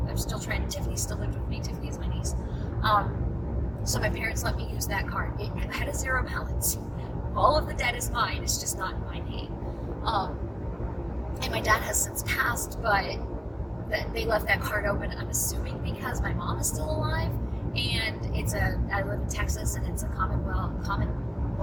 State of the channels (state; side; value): identical; both; correlation 1.00